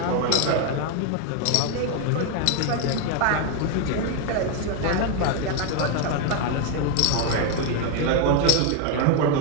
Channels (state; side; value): different; both; correlation 0.01